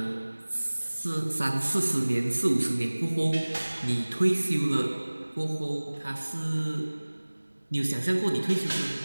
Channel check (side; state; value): both; inverted; correlation -1.00